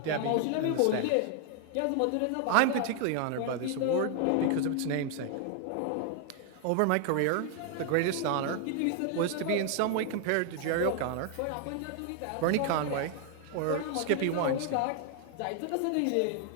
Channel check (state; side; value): different; both; correlation 0.00